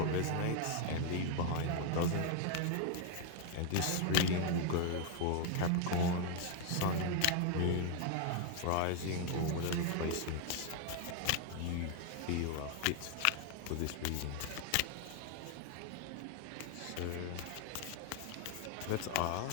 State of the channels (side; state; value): both; different; correlation 0.00